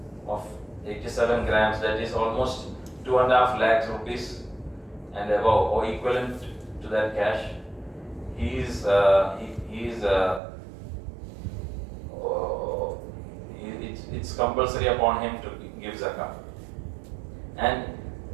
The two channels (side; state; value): left; drops out; at 10.4 s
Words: of 87 grams, that is almost 2.5 lakhs rupees and above, or equivalent to that cash, it's compulsory upon him to give zakah. And